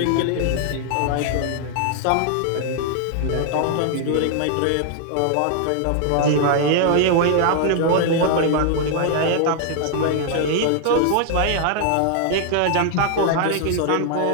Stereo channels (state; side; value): different; both; correlation 0.00